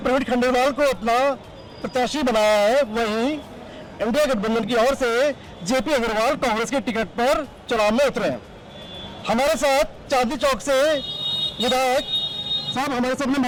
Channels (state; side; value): identical; both; correlation 1.00